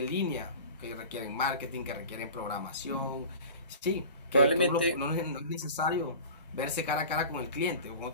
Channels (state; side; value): inverted; both; correlation -0.38